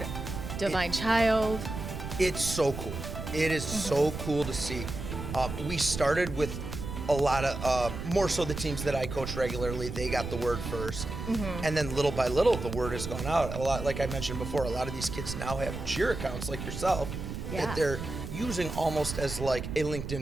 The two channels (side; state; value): right; noise; rumble, 7 dB below the sound